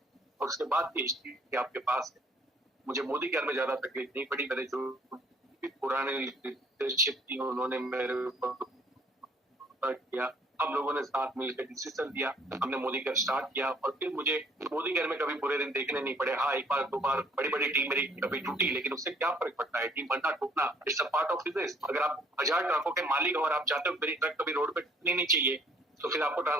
और उसके बाद की हिस्ट्री आपके पास है। मुझे मोदी केयर में ज्यादा तकलीफ नहीं पड़ी। मेरे जो पुराने लीडरशिप थी उन्होंने मेरे ऊपर किया। हम लोगों ने साथ मिलकर डिसीजन लिया, हमने मोदी केयर स्टार्ट किया और फिर मुझे मोदी केयर में कभी बुरे दिन देखने नहीं पड़े। हाँ, एक बार दो बार बड़ी बड़ी टीम मेरी कभी टूटी, लेकिन उससे क्या फर्क पड़ता है? टीम बनना टूटना it's a part of business. अगर आप 1000 ट्रकों के मालिक हो और आप चाहते हो मेरी ट्रक कभी रोड पे टूटनी नहीं चाहिए, तो फिर आपको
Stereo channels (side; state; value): both; normal; correlation 0.59